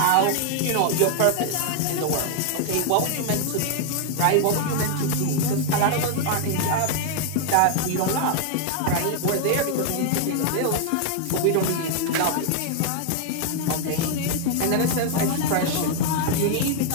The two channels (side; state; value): both; different; correlation 0.00